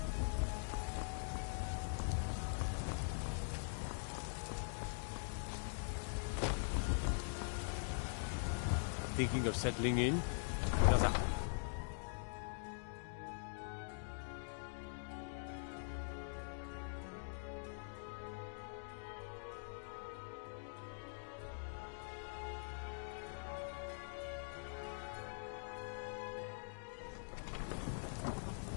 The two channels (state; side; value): silent; right; digital silence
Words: Thinking of settling in? How's that?